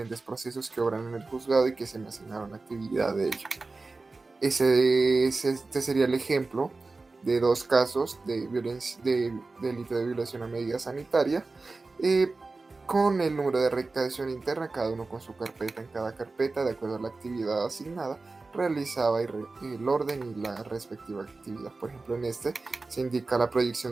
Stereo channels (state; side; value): quieter; left; 3.6 dB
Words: procesos que obran en el juzgado y que se me asignaron actividad de ello. Este sería el ejemplo de dos casos de delito de violación a medida sanitaria, con el número de recaudación interna, cada uno con su carpeta. En cada carpeta, de acuerdo a la actividad asignada, realizaba el orden y la respectiva actividad. Por ejemplo, en este se indica la